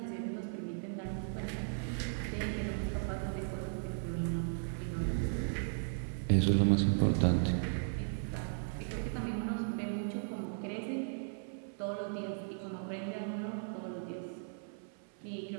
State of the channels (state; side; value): silent; left; 53 dB below the other